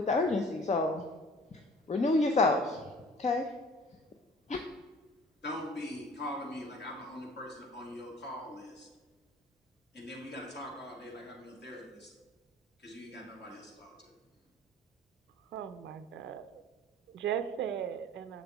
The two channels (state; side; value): normal; both; correlation 0.49